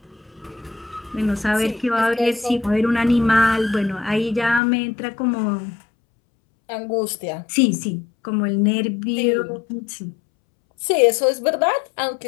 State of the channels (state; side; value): drops out; right; at 4.6 s